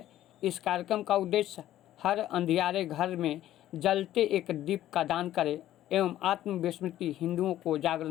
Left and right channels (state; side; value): quieter; right; 13.1 dB